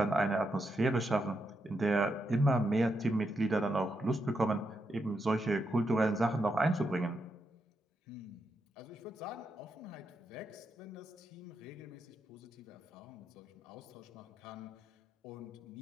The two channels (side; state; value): both; normal; correlation 0.83